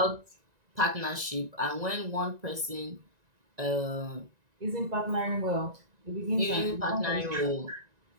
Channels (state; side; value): late; left; 1.9 ms